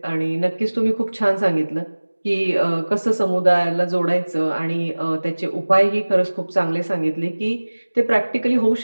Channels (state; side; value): inverted; both; correlation -1.00